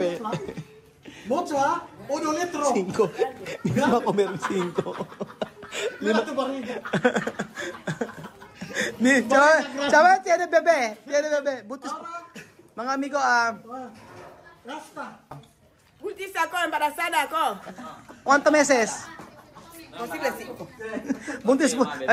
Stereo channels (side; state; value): both; identical; correlation 1.00